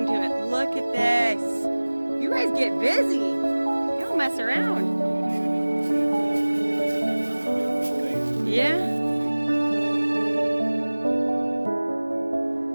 to it. Look at this. You guys get busy. You don't mess around. Yeah.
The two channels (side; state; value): both; inverted; correlation -1.00